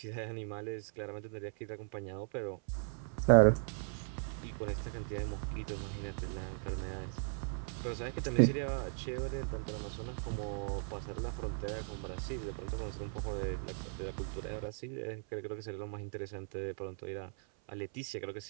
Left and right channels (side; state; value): left; silent; 53 dB below the other